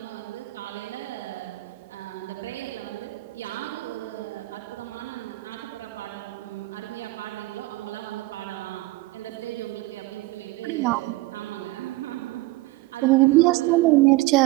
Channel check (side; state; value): left; quieter; 20.2 dB